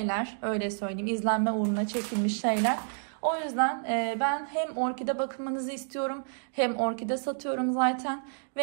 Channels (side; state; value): left; silent; digital silence